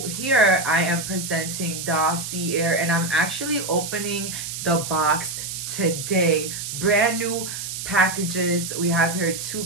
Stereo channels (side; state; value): right; noise; hiss, 6 dB below the sound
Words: here I am presenting dossier, and I'm actually opening the box today. Brand new packages. We have here two